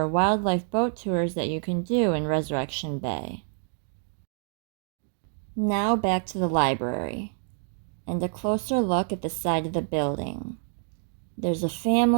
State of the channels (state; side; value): silent; left; digital silence